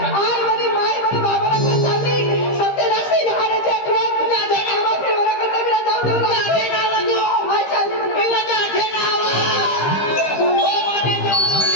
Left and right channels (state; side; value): late; right; 15 ms